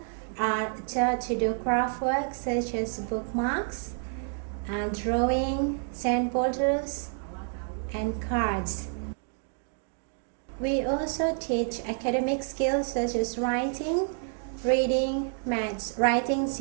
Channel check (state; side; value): silent; left; 59 dB below the other